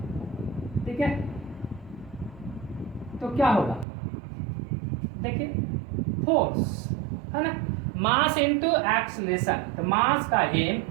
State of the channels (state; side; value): drops out; left; at 3.9 s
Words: ठीक है, तो क्या होगा, देखिए फोर्स, है ना, मास इनटू एक्सीलरेशन। तो मास का M,